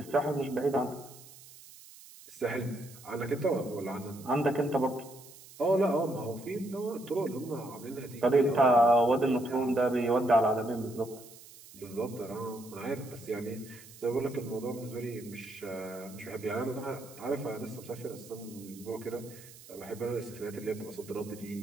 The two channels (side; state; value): right; noise; hiss, 19 dB below the sound